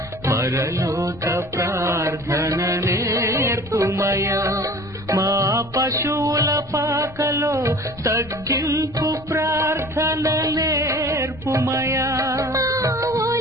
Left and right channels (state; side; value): noise; left; rumble, 19 dB below the sound